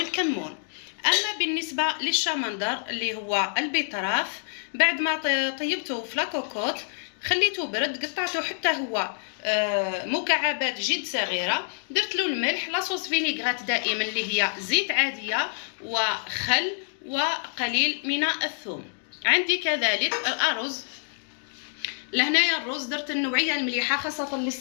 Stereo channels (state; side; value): silent; right; digital silence